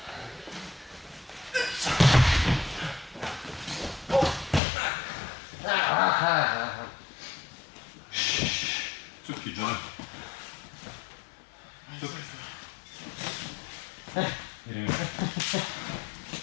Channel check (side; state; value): right; drops out; at 4.6 s